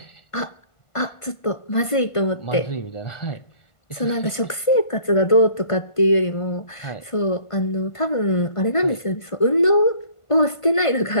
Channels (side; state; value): right; late; 1.5 ms